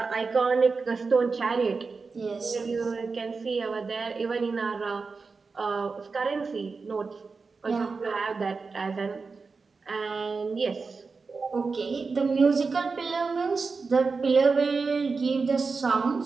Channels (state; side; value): quieter; left; 4.5 dB